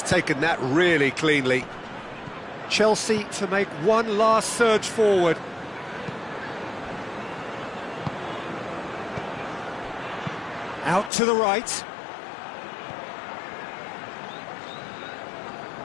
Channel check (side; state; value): right; drops out; at 11.1 s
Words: taken that really cleanly. Chelsea to make one last surge forward. Out to the right.